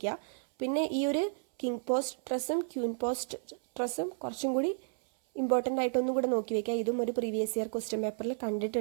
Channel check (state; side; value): silent; left; 56 dB below the other